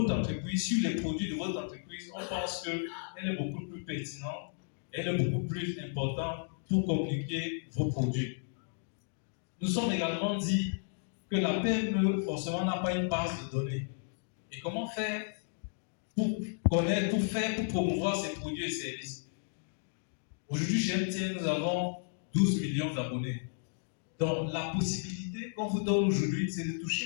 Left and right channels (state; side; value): silent; right; digital silence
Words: entreprise, sur les produits de votre entreprise. On pense qu'elle est beaucoup plus pertinente, elle est beaucoup plus importante pour communiquer vos produits. Nous sommes également dit que la PME, forcément, n'a pas une base de données. Et comment faire pour connaître, pour promouvoir ces produits et services? Aujourd'hui, chez MTN, nous avons 12 millions d'abonnés. Donc, la possibilité qu'on vous donne aujourd'hui, c'est de toucher